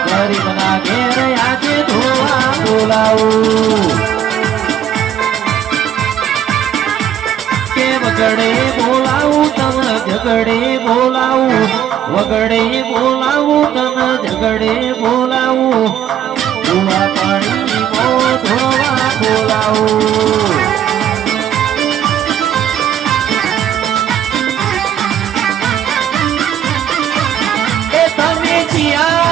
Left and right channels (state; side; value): quieter; left; 10.2 dB